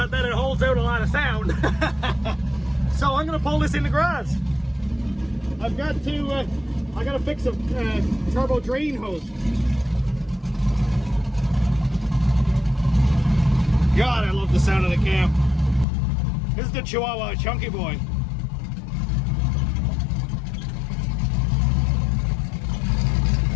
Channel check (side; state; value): right; drops out; at 15.9 s